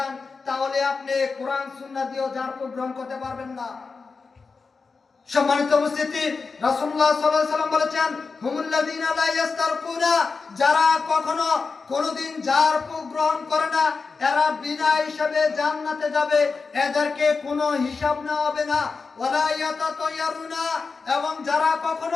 তাহলে আপনি কোরআন সুন্নাহ দিয়ে ঝাড়ফুঁক গ্রহণ করতে পারবেন না। সম্মানিত উপস্থিতি, রাসূলুল্লাহ সাল্লাল্লাহু আলাইহি সাল্লাম বলেছেন হুমুল্লাযীনা লা ইস্তারকুনা, যারা কখনো কোনোদিন ঝাড়ফুঁক গ্রহণ করে না, এরা বিনা হিসাবে জান্নাতে যাবে, এদেরকে কোনো হিসাব নেওয়া হবে না। ওয়া লা ইয়াতাতায়্যারুনা, এবং যারা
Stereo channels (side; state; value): right; quieter; 4.6 dB